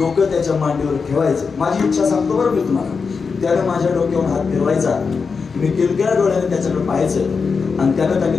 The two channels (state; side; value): quieter; right; 5.2 dB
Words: त्याच्या मांडीवर ठेवायचं. माझी इच्छा सांगतो बरं मी तुम्हाला, त्यानं माझ्या डोक्यावर हात फिरवायचा, मी किलकिल्या डोळ्याने त्याच्याकडे पाहायचं, आणि त्यानं